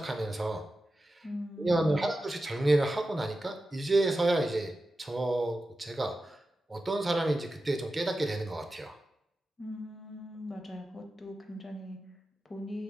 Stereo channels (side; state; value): both; normal; correlation 0.93